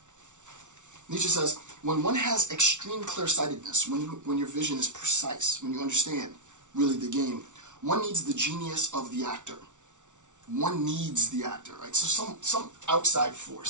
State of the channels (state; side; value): late; left; 0.86 ms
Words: Nietzsche says, when one has extreme clear-sightedness, when your vision is precise, when you understand really the game, one needs the genius of the actor. One needs the actor, right? So some outside